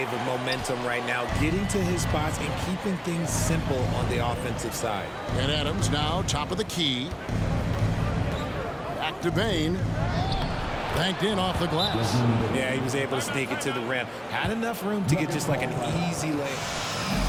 of momentum right now, getting to his spots and keeping things simple on the offensive side. And Adams now top of the key. Back to Bain. Banked in off the glass. Yeah, he was able to sneak it to the rim. Had enough room to get just like an easy layup.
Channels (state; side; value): identical; both; correlation 1.00